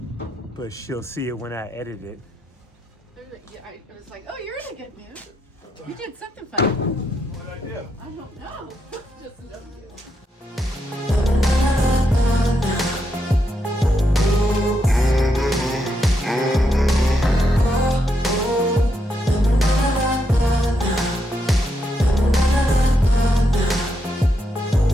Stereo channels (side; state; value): both; normal; correlation 0.81